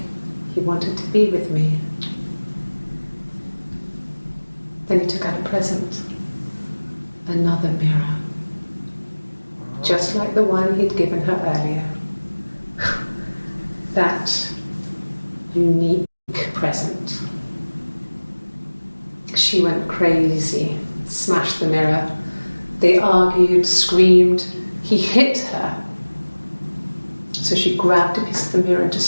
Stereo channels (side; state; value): both; inverted; correlation -1.00